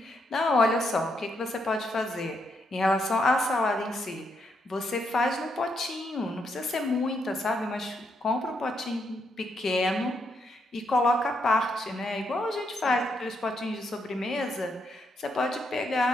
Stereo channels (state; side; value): normal; both; correlation 0.78